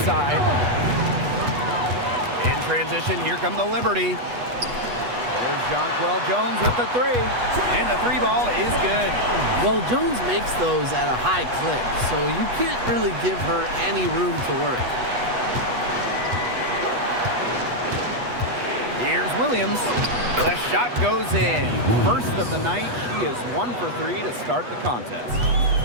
In transition, here come the Liberty. There's Jonquel Jones with the 3. And the 3 ball is good. Well, Jones makes those at a high clip, so you can't really give her any room to work. Here's Williams. The shot goes in. First of the night, she is 1 for 3 to start the contest.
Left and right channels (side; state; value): left; late; 8.2 ms